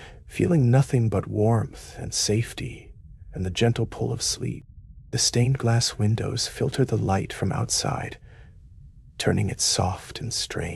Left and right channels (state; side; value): identical; both; correlation 1.00